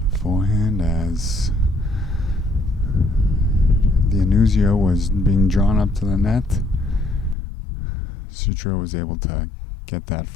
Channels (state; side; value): drops out; right; at 7.4 s